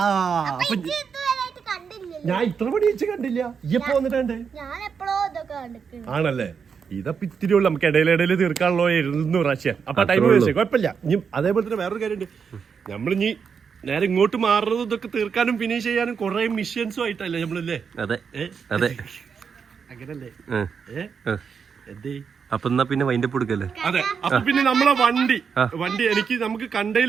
ഞാൻ ഇത്ര പണി വെച്ച് കണ്ടില്ല. ഇപ്പൊ വന്നിട്ടുണ്ട് ആണല്ലേ? ഇതപ്പൊ ഇത്തിരി ഉള്ളു. നമുക്ക് ഇടയിലിടയിൽ തീർക്കാനുള്ളോ 200 പ്രാവശ്യം. അപ്പൊ ടൈം വേസ്റ്റ് കുഴപ്പമില്ല. ഇനി അതേപോലെ തന്നെ വേറൊരു കാര്യമുണ്ട്. നമ്മളിനി നേരെ ഇങ്ങോട്ട് മാറുന്നത് ഇതൊക്കെ തീർക്കാനും ഫിനിഷ് ചെയ്യാനും കുറെ മിഷ്യൻസും ആയിട്ടല്ലേ നമ്മളല്ലേ? അതെ അതെ, അങ്ങനല്ലേ? അപ്പൊ എന്നാ പിന്നെ വൈൻഡപ്പ് കൊടുക്കല്ലേ? അതെ. അപ്പൊ പിന്നെ നമ്മളെ വണ്ടി നമുക്ക്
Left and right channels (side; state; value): left; quieter; 6.3 dB